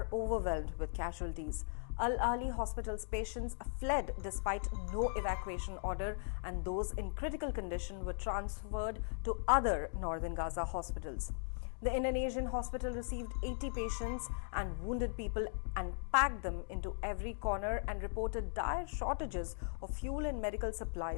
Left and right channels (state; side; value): silent; right; digital silence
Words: overwhelmed with casualties. Al-Ali Hospital's patients fled despite no evacuation order, and those in critical condition were transferred to other northern Gaza hospitals. The Indonesian hospital received 80 patients and wounded people and packed them into every corner and reported dire shortages of fuel and medical